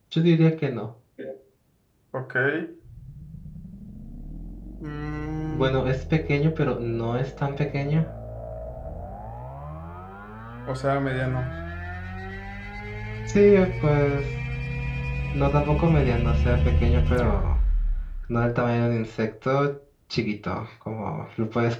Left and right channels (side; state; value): both; identical; correlation 1.00